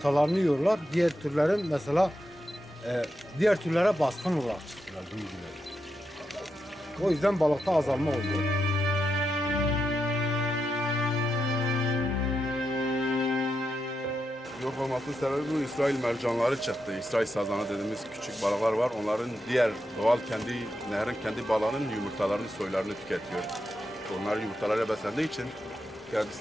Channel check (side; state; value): both; normal; correlation 0.85